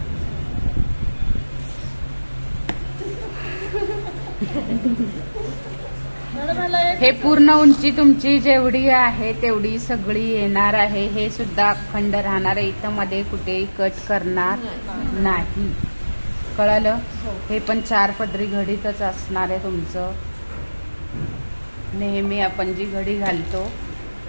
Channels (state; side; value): inverted; both; correlation -1.00